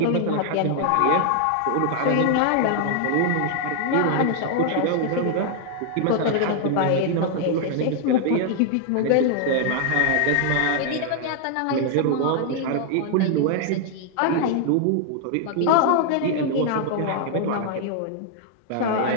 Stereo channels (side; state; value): both; different; correlation 0.00